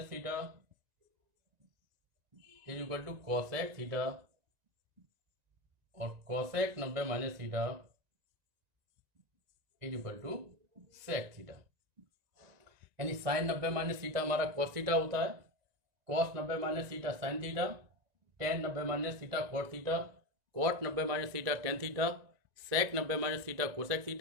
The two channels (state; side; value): late; left; 1.9 ms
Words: theta is equal to cosec theta, और cosec 90 minus theta is equal to sec theta. यानी sine 90 minus theta हमारा cos theta होता है, cos 90 minus theta sine theta, tan 90 minus theta cot theta, cot 90 minus theta tan theta, sec 90 minus theta cosec